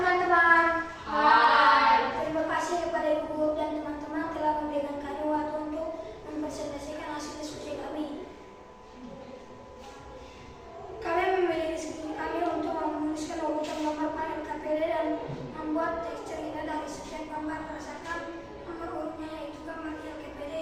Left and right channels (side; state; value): both; identical; correlation 1.00